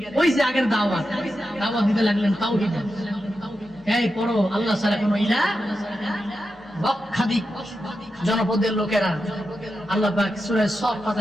ওই যে আগের দাওয়াত দিতে লাগলেন তাওহীদ। এই পড়ো আল্লাহ ছাড়া কোনো ইলাহ, লক্ষাধিক জনপদের লোকেরা আল্লাহ পাক সূরা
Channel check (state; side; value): normal; both; correlation 0.89